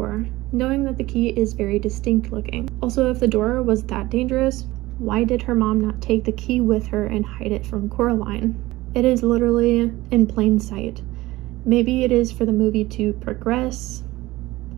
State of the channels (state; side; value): quieter; left; 18.5 dB